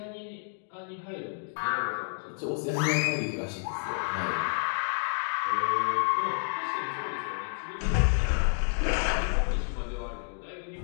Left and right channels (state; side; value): silent; right; 58 dB below the other